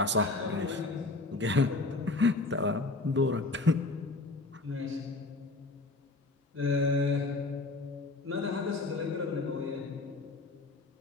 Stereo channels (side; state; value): right; quieter; 3.3 dB